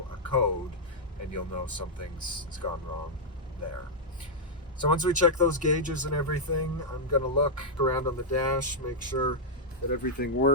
a code and you'll know something's gone wrong there. So once we check those gauges and everything, I'm going to look around on the dash, make sure that everything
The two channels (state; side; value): normal; both; correlation -0.06